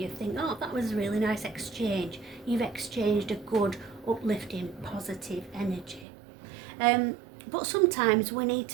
Think, oh, that was a really nice exchange. You've exchanged a good, uplifting, positive energy. But sometimes we need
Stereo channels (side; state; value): left; drops out; at 6.1 s